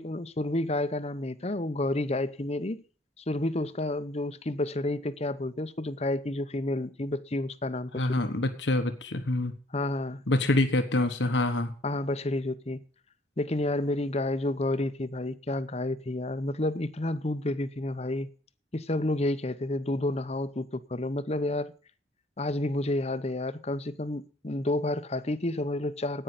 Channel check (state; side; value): normal; both; correlation 0.60